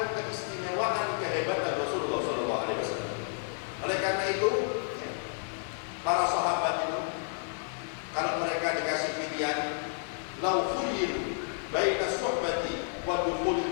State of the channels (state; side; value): silent; right; 57 dB below the other